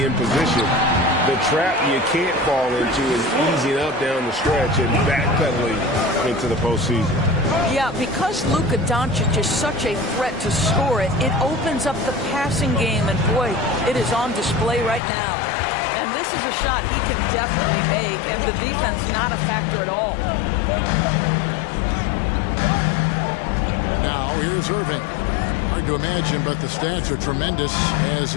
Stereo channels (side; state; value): right; drops out; at 15.0 s